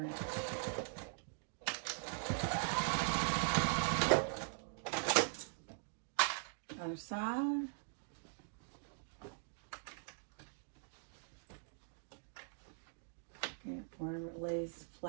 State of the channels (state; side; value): silent; left; digital silence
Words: inch. Other side. Yeah, wherever it lays